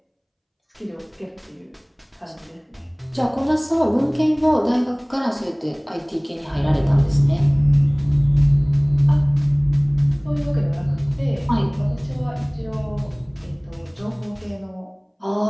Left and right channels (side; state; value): both; identical; correlation 1.00